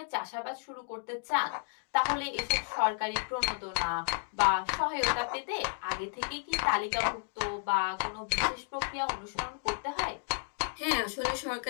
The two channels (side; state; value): right; silent; digital silence